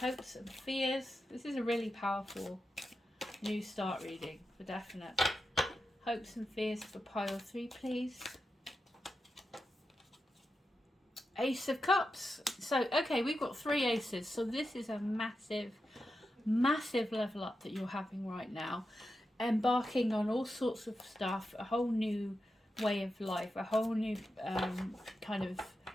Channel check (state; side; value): normal; both; correlation 0.89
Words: and fears. This is a really powerful new start reading for definite. Hopes and fears for pile 3, please. Ace of Cups. So okay, we've got 3 aces, so this is a massive level up that you're having right now, embarking on all sorts of stuff, a whole new way of life, a whole new kind of